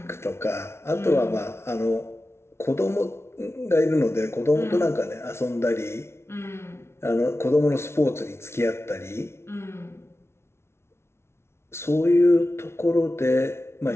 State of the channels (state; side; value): late; right; 0.12 ms